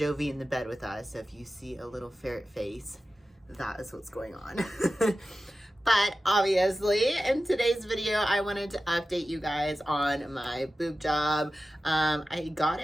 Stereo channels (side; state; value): both; normal; correlation 0.94